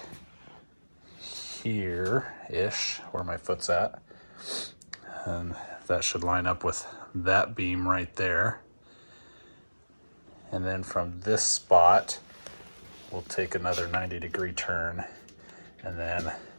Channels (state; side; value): inverted; both; correlation -1.00